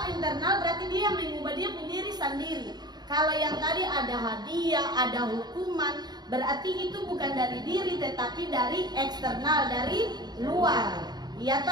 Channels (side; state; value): left; late; 0.20 ms